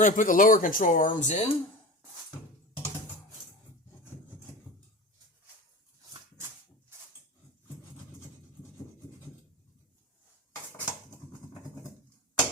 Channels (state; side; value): normal; both; correlation 0.30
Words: going to put the lower control arms in.